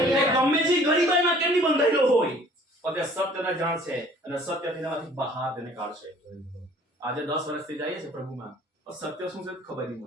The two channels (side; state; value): both; normal; correlation 0.54